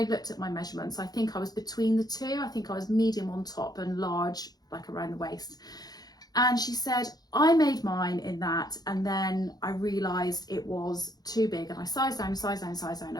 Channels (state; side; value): late; right; 0.19 ms